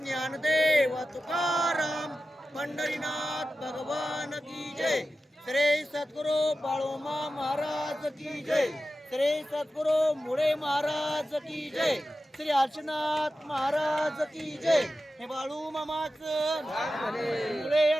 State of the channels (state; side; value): normal; both; correlation 0.93